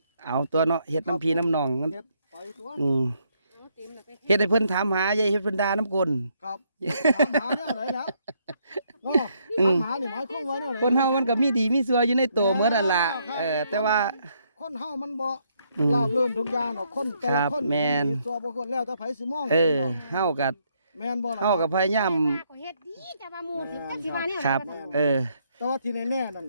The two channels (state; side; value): inverted; both; correlation -0.73